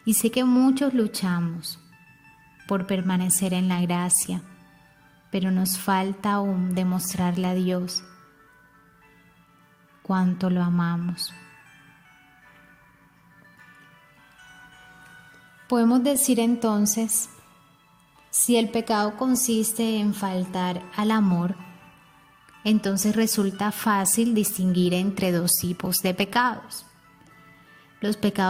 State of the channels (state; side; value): identical; both; correlation 1.00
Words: Y sé que muchos luchamos por permanecer en la gracia, pero nos falta aún demostrarle a Dios cuánto lo amamos. Podemos decir entonces, si el pecado consiste en faltar al amor, entonces resulta fácil distinguir entre dos tipos de pecados: los